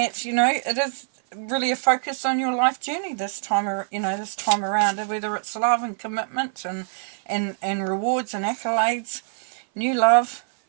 it is really a focus on your life journey this time around, whether it's love and commitment and rewards and accolades, new love,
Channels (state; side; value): silent; left; 57 dB below the other